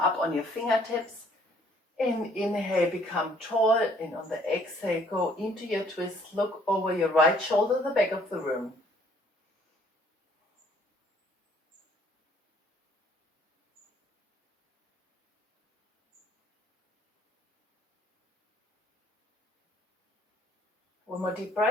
on your fingertips. And inhale, become tall. And on the exhale, go into your twist. Look over your right shoulder, the back of the room. One more deep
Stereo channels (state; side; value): normal; both; correlation 0.62